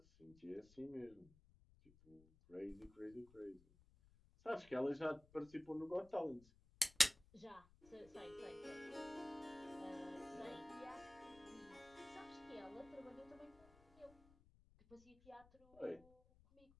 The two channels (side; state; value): left; noise; rumble, 25 dB below the sound